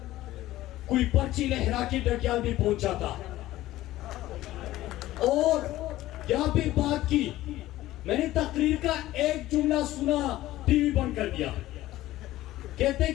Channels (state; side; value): quieter; right; 15.7 dB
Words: कोई पर्ची लहरा के डटियाल भी पहुंचा था और यहाँ पे बात की। मैंने तकरीर का एक जुमला सुना, टीवी बंद कर दिया। कहते